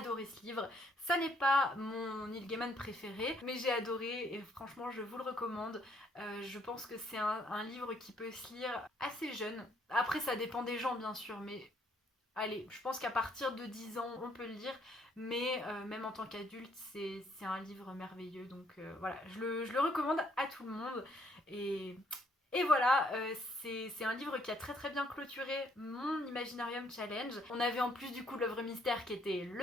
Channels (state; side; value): normal; both; correlation 0.68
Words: ce livre. Ça n'est pas mon Neil Gaiman préféré, mais j'ai adoré et franchement, je vous le recommande. Je pense que c'est un livre qui peut se lire assez jeune. Après, ça dépend des gens, bien sûr, mais allez, je pense qu'à partir de 10 ans, on peut le lire, mais même en tant qu'adulte, c'est un livre merveilleux. Donc voilà, je le recommande à tout le monde. Et, et voilà, c'est un livre qui a très très bien clôturé mon Imaginarium Challenge. On avait en plus du coup l'œuvre mystère qui était